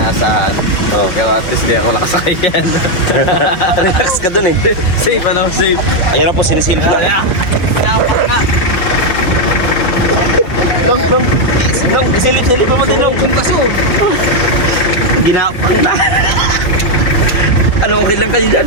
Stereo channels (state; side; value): late; right; 5.7 ms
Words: Oh. Pero at least di ako nakasakay yan. Relax ka dun eh. Safe, ano? Safe. Ayan na po, sinisilip na. Pinapak na. Long, isilip mo din, Long. Kung kaso. Ginapang na. Ano, okay lang kayo dyan?